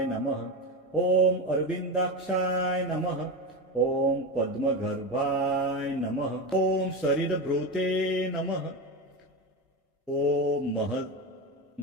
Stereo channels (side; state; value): both; normal; correlation 0.19